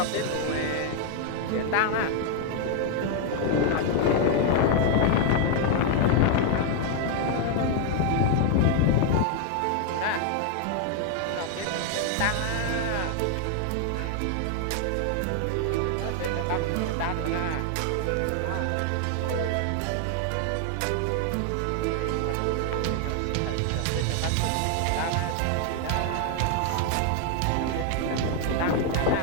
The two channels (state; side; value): different; both; correlation 0.00